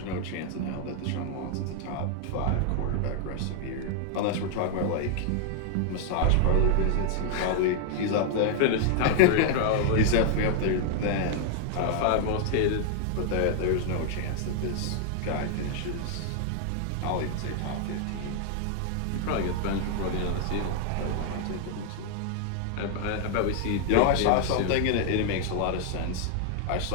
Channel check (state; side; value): different; both; correlation 0.00